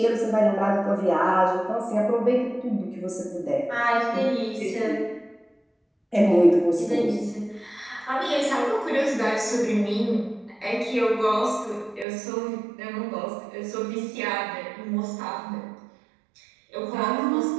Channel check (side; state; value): left; drops out; at 12.1 s